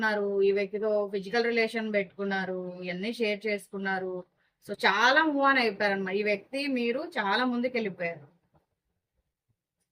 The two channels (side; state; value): both; identical; correlation 1.00